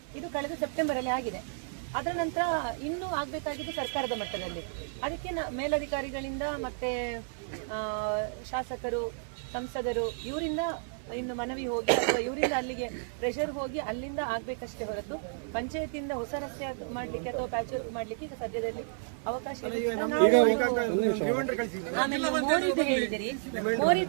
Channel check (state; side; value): silent; left; 57 dB below the other